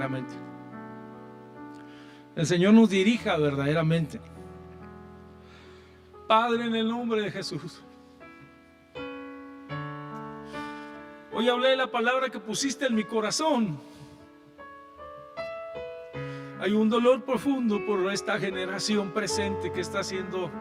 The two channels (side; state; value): both; identical; correlation 1.00